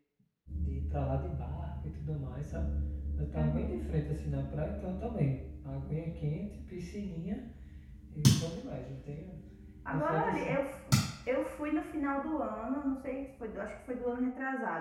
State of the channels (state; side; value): identical; both; correlation 1.00